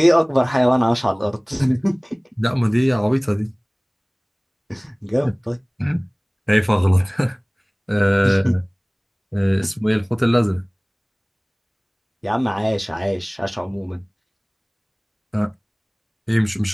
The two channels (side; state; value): both; identical; correlation 1.00